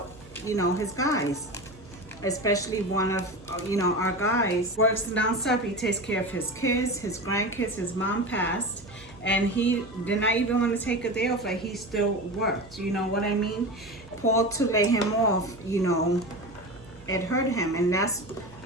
his guys. Especially one of our guys works nonstop. He takes care of his kids, his grandkids. His mom passed, and he did not even want to take a day off. Like, he still worked. You know what I mean? Paul, to lay him off, it hurt him, and that's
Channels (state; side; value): noise; right; hum, 22 dB below the sound